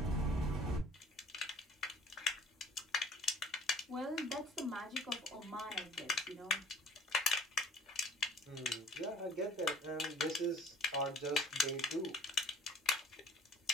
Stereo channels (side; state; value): both; normal; correlation 0.50